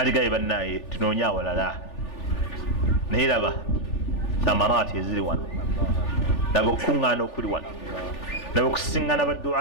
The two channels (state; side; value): late; right; 3.4 ms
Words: bannaye tunoonya awalala. Naye laba thamaraati eziri wano, laba okukuŋŋaana okuli wano, laba okusiŋŋana